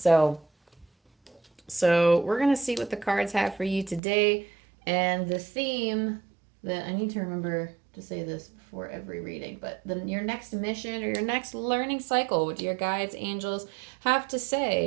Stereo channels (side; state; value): left; drops out; at 4.0 s